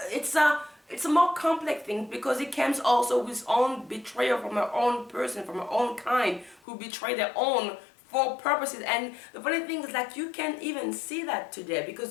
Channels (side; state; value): right; drops out; at 6.6 s